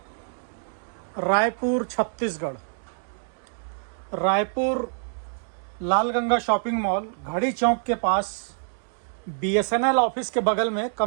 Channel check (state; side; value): silent; left; digital silence